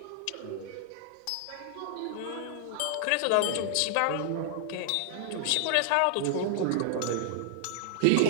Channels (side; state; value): both; different; correlation -0.01